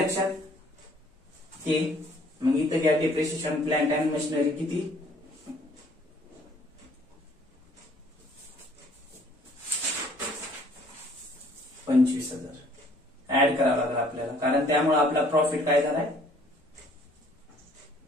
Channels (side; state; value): both; normal; correlation 0.59